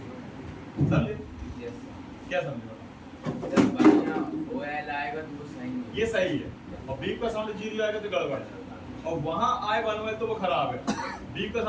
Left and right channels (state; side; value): identical; both; correlation 1.00